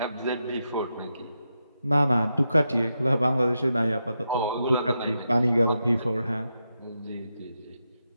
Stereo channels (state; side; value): inverted; both; correlation -0.86